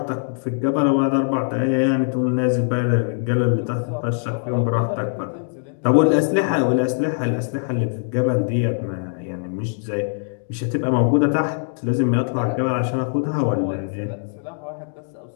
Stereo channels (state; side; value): silent; right; digital silence